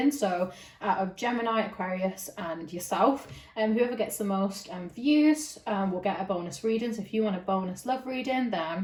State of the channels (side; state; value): both; identical; correlation 1.00